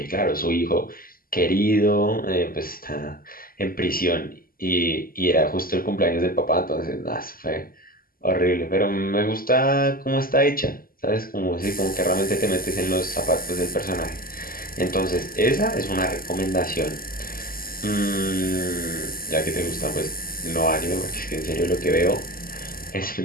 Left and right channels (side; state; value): right; late; 0.42 ms